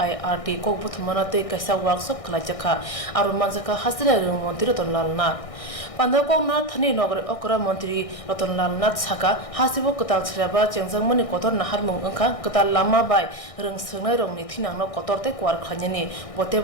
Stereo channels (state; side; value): late; right; 1.6 ms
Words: kokbuthmanate kaisa workshop khlaijakha aru manjaka hasira rung mantri Ratanlal Nath pandako na thani nogre okra mantri Ratanlal Nath saka hasibo kotal shraba chengjangmani kotor naharmung angkha kotal lama bai rung sungnai rongni thinangno kotorte kwar khanyani